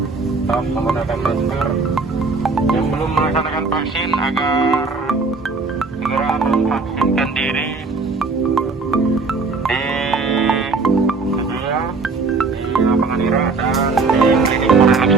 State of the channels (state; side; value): quieter; left; 4.0 dB